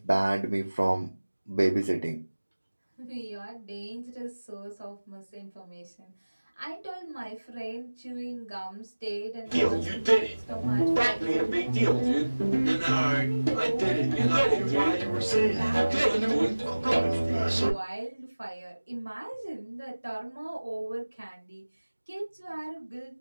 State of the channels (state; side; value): inverted; both; correlation -1.00